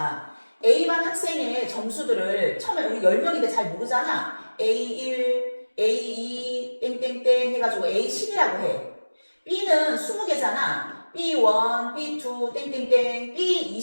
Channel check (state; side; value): inverted; both; correlation -1.00